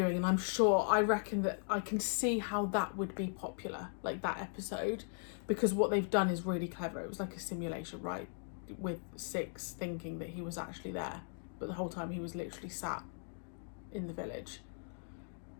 and I reckon that I can see how that would be popular, like that episode, because what they've done is really clever. It was like a simulation, right? With Six thinking that he was actually there, but the whole time he was literally sat in the village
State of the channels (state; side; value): silent; right; 52 dB below the other